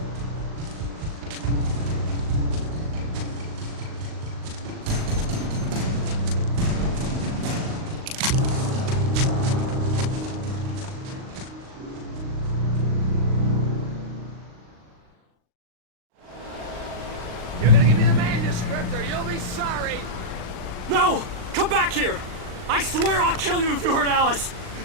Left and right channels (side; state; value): left; late; 39 ms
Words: You're gonna give me the manuscript or you'll be sorry. No! Come back here! I swear I'll kill you if you hurt Alice!